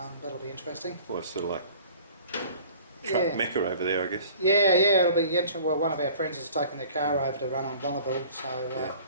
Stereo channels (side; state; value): both; inverted; correlation -0.48